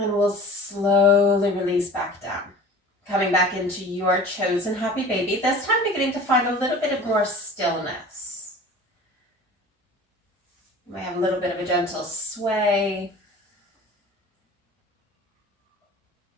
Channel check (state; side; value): normal; both; correlation 0.42